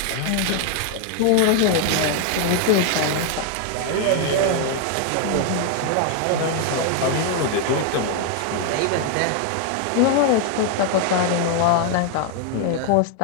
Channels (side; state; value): both; different; correlation 0.00